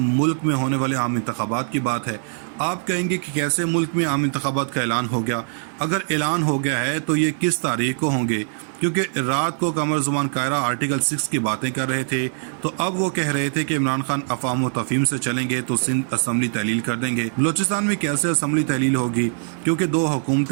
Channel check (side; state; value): left; silent; 58 dB below the other